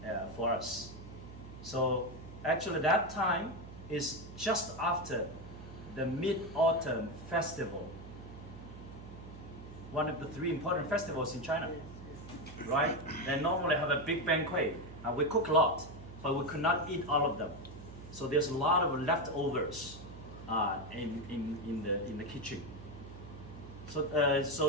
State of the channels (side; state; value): right; noise; hum, 14 dB below the sound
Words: for us?" So actually, that time is just after the Mid-Autumn Festival, one of the 3 important festivals in China, right? They normally have a big banquet, and we cook a lot, but we could not eat all of them. So there's a lot of leftovers in the kitchen.